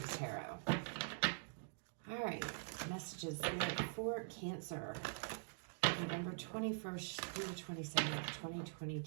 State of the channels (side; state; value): left; silent; digital silence